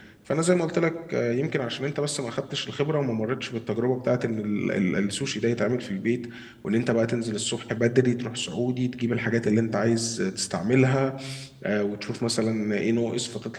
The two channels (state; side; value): identical; both; correlation 1.00